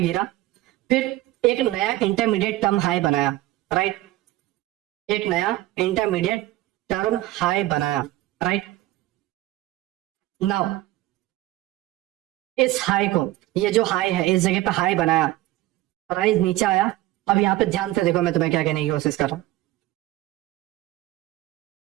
गिरा, फिर एक नया इंटरमीडिएट टर्म हाई बनाया, राइट, एक नया इंटरमीडिएट टर्म हाई बनाया, राइट। नाउ इस हाई को, ये जो हाई है इस जगह पे हाई बनाया, प्राइस नीचे आया, अब यहाँ पे ध्यान से देखो मैं तुम्हें क्या कहने की कोशिश कर रहा हूं,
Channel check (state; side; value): quieter; left; 16.4 dB